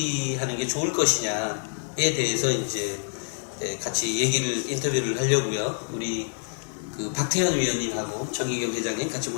게 좋을 것이냐에 대해서 이제 같이 인터뷰를 하려고요. 우리 그 박태현 위원님하고 정희경 회장님 같이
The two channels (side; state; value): right; silent; digital silence